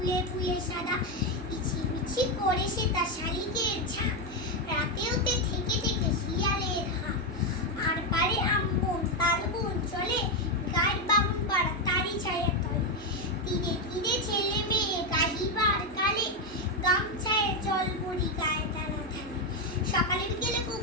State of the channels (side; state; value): both; normal; correlation 0.07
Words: ফুলে সাদা। ইছি করে সে তার শালিকের ঝাঁক, রাতেওতে থেকে থেকে শিয়ালের হাঁক। আর পারে আমবন তালবন চলে, গায়ের বামুন পাড়া তারি ছায়া তলে। তীরে তীরে ছেলে মেয়ে গাহিবার কালে, গামছায় জল ভরি গায়ে টানা ঢালে। সকালে বিকেলে